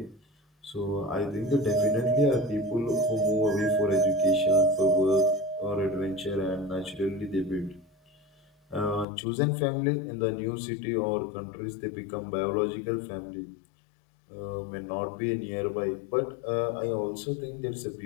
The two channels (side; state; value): right; drops out; at 9.1 s